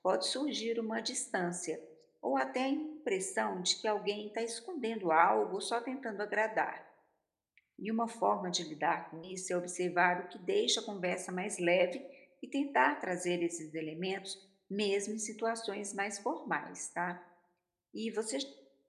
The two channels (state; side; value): identical; both; correlation 1.00